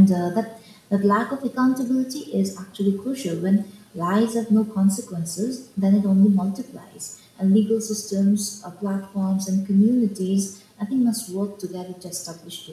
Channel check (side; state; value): both; identical; correlation 1.00